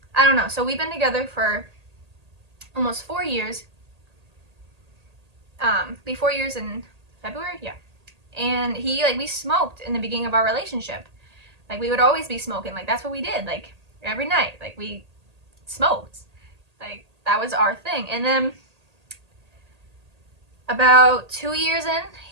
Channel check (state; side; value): late; left; 1.8 ms